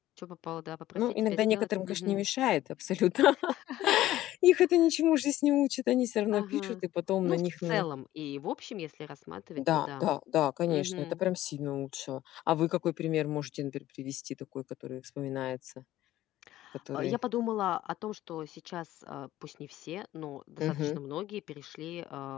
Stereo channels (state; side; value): quieter; right; 14.6 dB